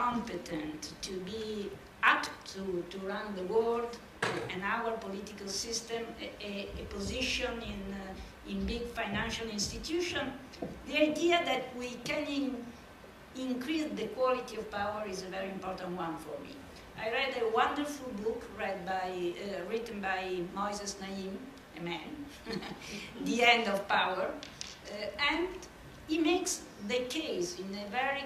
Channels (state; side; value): identical; both; correlation 1.00